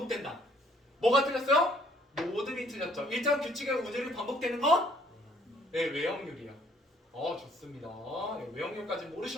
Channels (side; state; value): both; normal; correlation 0.63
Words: 뭐가 틀렸어요? 모든이 틀렸죠. 일정한 규칙의 운율이 반복되는 건? 외형률이야. 좋습니다. 외형률까지